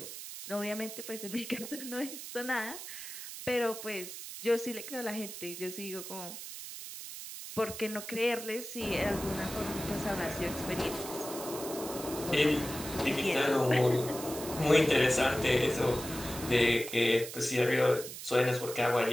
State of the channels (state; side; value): noise; right; hiss, 10 dB below the sound